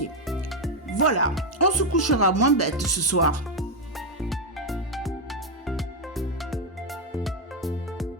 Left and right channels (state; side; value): normal; both; correlation 0.04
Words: Voilà, on se couchera moins bête ce soir.